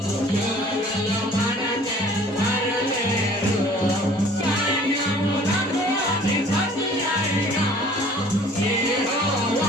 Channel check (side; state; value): both; normal; correlation 0.51